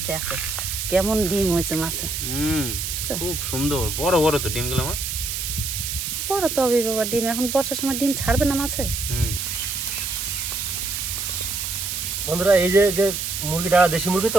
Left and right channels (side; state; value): right; noise; hiss, 3 dB below the sound